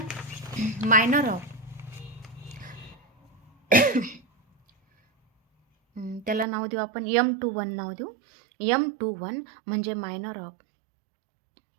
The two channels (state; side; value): drops out; left; at 6.5 s